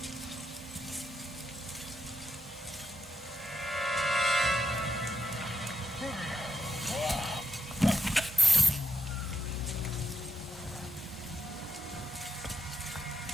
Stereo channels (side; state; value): both; normal; correlation 0.84